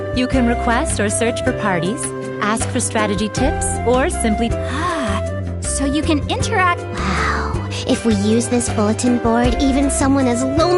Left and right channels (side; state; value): both; identical; correlation 1.00